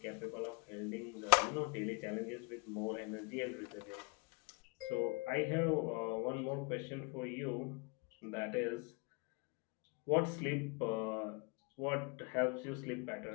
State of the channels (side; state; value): right; quieter; 28.6 dB